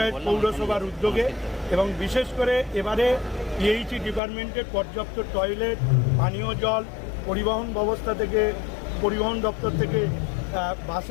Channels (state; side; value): drops out; right; at 4.2 s